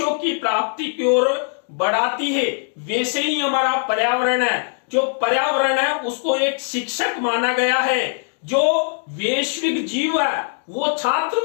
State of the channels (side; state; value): right; silent; digital silence